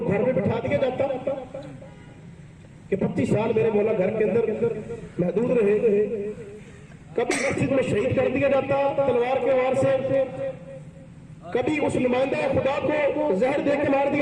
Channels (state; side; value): identical; both; correlation 1.00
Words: گھر میں بٹھا دیا جاتا کہ 25 سال میرے مولا گھر کے اندر محدود رہے. کبھی مسجد میں شہید کر دیا جاتا تلوار کے وار سے. کبھی اس نمائندہ خدا کو زہر دے کے مار